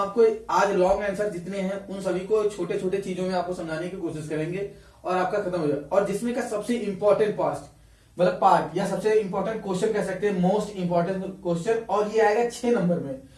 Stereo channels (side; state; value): both; identical; correlation 1.00